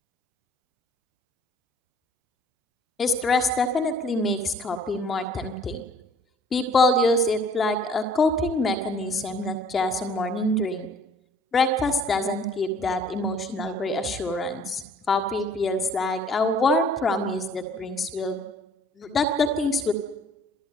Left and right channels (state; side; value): normal; both; correlation 0.55